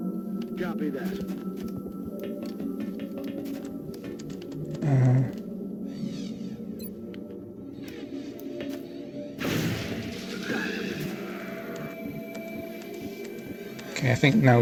Copy that. Okay, I think now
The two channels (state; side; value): identical; both; correlation 1.00